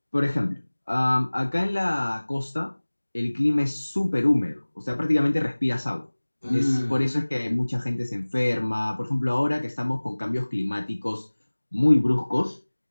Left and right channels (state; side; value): inverted; both; correlation -1.00